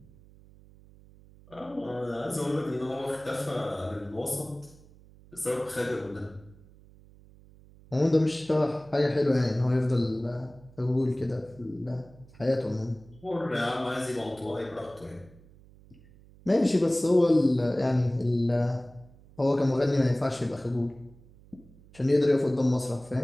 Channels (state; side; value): noise; right; hum, 24 dB below the sound